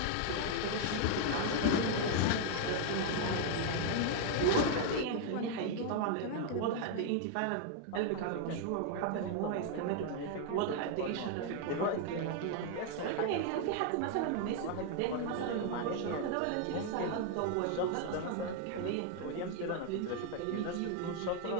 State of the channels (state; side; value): different; both; correlation 0.00